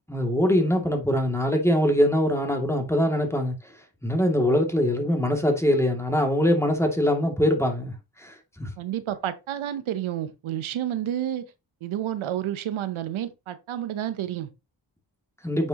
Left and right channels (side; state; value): both; normal; correlation 0.61